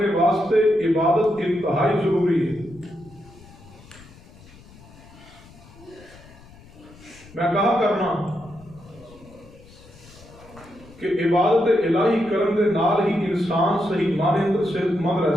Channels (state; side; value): noise; left; rumble, 22 dB below the sound